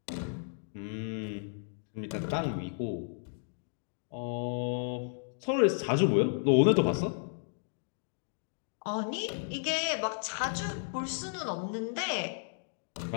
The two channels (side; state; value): right; silent; digital silence